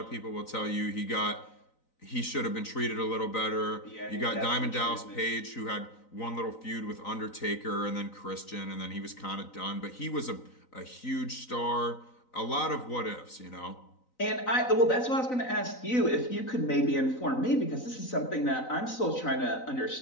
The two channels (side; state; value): right; late; 3.9 ms